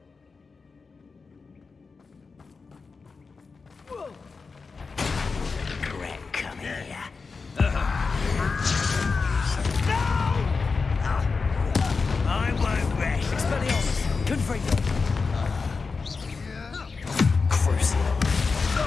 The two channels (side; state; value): right; quieter; 4.6 dB